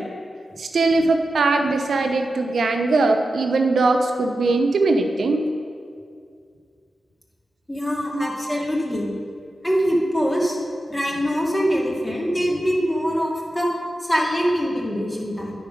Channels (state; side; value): normal; both; correlation 0.91